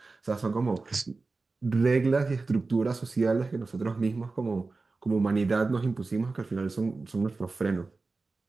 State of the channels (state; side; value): quieter; left; 3.8 dB